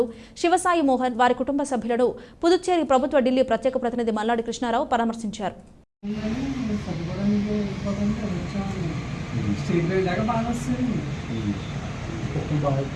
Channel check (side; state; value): both; identical; correlation 1.00